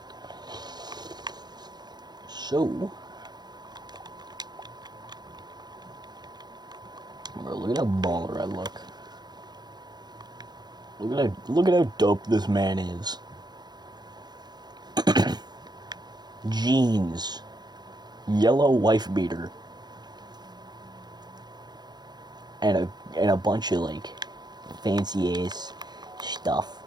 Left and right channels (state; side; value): late; left; 0.20 ms